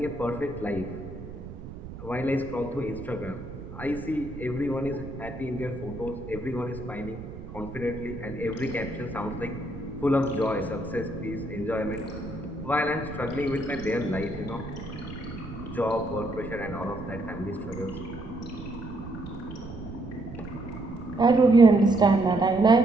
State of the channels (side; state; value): right; noise; rumble, 12 dB below the sound